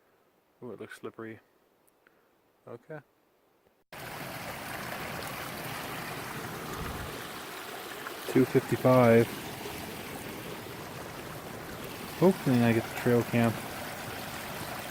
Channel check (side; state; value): both; identical; correlation 1.00